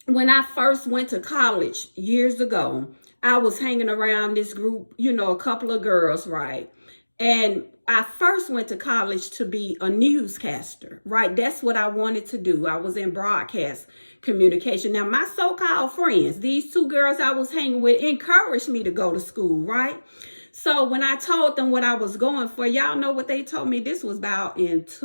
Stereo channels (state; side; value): inverted; both; correlation -1.00